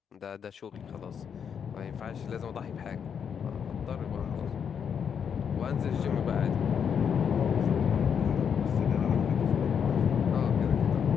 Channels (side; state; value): right; quieter; 7.4 dB